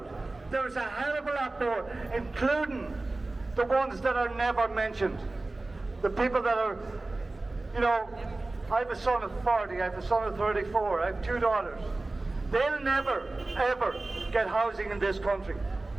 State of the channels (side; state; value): left; quieter; 3.1 dB